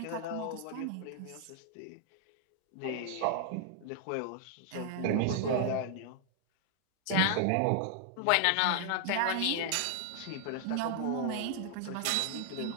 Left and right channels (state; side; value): different; both; correlation 0.00